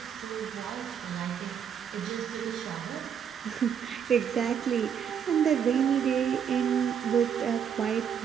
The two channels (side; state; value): left; quieter; 8.0 dB